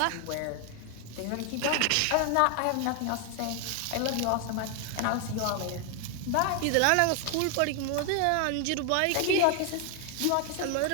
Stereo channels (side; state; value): both; different; correlation 0.00